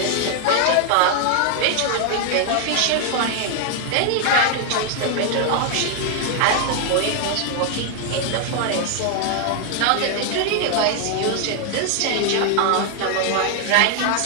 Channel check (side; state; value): both; different; correlation 0.00